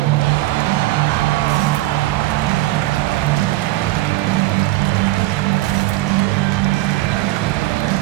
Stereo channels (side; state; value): left; quieter; 17.8 dB